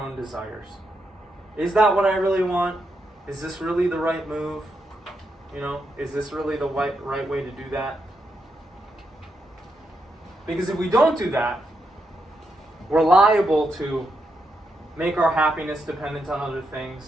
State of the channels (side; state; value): both; normal; correlation 0.82